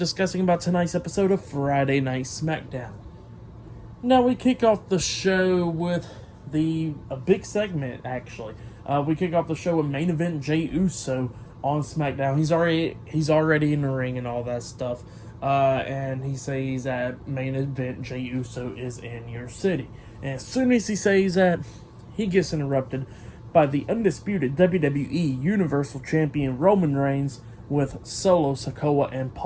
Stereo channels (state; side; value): identical; both; correlation 1.00